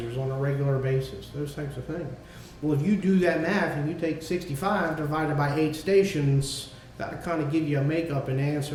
on a regular basis, those types of things. Well, if you do that math and you take 65 divided by 8 stations, that'll kind of give you a makeup and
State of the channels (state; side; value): identical; both; correlation 1.00